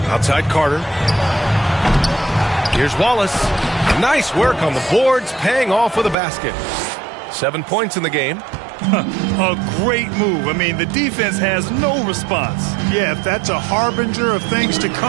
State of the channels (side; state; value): left; drops out; at 6.2 s